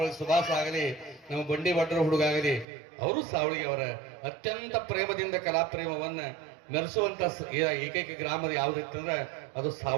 ಸುಭಾಸ್ ಆಗಲಿ, ನಮ್ಮ ಬಂಡಿ ಭಟ್ರ ಹುಡುಗಾಗಲಿ, ಅವರು ಸಾವಳಿಗೆ ಅವರ ಅತ್ಯಂತ ಪ್ರೇಮದಿಂದ ಕಲಾಪ್ರೇಮವನ್ನ ಮೆರೆಸುವಂತ ಏಕೈಕ ಗ್ರಾಮದ ಯಾವುದಿತ್ತಂದ್ರೆ ಅದು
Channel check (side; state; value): left; drops out; at 2.7 s